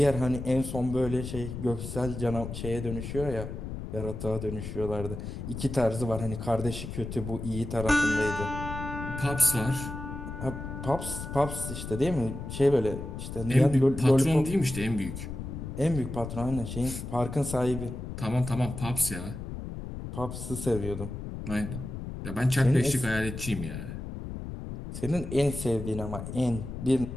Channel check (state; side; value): noise; left; rumble, 7 dB below the sound